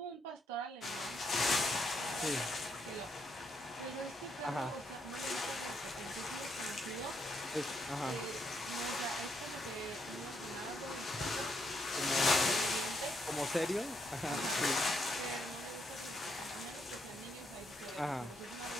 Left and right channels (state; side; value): normal; both; correlation 0.77